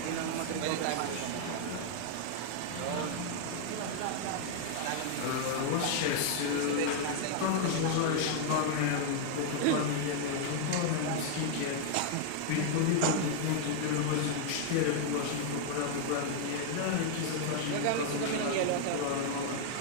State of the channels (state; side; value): different; both; correlation 0.00